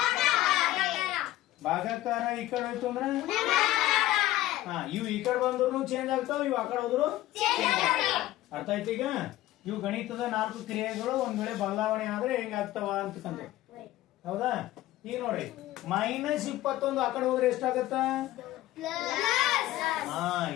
ಭಾಗಾಕಾರ ಈ ಕಡೆ ಹೋಯ್ತು ಅಂದ್ರೆ, ಇವು ಈ ಕಡೆ ಬಂದ್ರು ಚೇಂಜ್ ಆಗ್ತಾವ, ಇವು ಆ ಕಡೆ ಹೋದ್ರು. ಅರ್ಥ ಆಯ್ತು? ಈಗ ಇವು ಗಣಿತದ 4 ಕ್ರಿಯೆಗಳು ಒಂದ್ ವೇಳೆ ಬದಲಾವಣೆ ಆದ್ರೆ ಹೆಂಗಾಗ್ತಾವ ಅಂತಕ್ಕಂಥ. ಹೌದಾ? ಈಗ ನೋಡಿ, ಮೈನಸ್ 21 ಆ ಕಡೆ ಹೋದ್ರೆ ಎಷ್ಟಾಗತ್ತ? =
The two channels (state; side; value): quieter; right; 15.5 dB